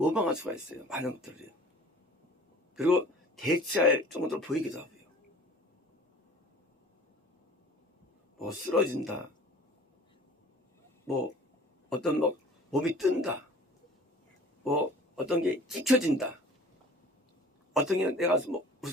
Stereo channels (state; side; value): normal; both; correlation 0.46